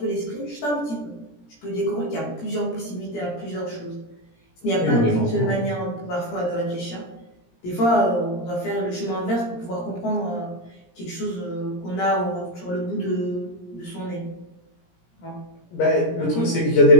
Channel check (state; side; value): late; right; 17 ms